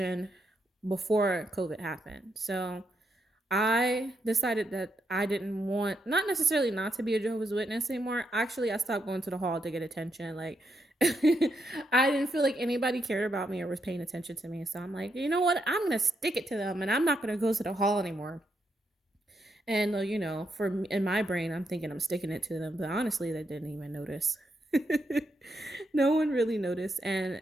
before COVID happened. So I decided that I didn't want, not necessarily not to be a Jehovah's Witness anymore. Actually, I stopped going to the hall to get attention. Like, I didn't feel like anybody cared about me or was paying attention to me. So I'm like, you know what? I'm going to stick it to them and I'm not going to go to the hall anymore. And, in my brain, I'm thinking I'm sticking it to them. But honestly, they didn't even notice. No one really noticed. And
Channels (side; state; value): both; normal; correlation 0.80